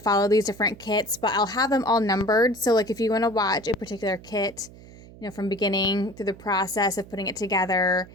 these different kits, but I'll have them all numbered. So like if you want to watch a particular kit, from beginning through the process of putting it together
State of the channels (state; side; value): noise; right; hum, 20 dB below the sound